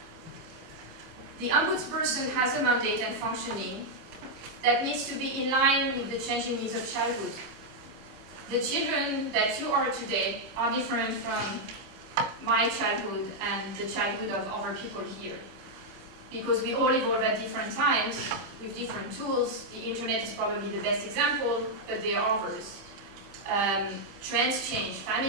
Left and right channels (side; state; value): left; late; 25 ms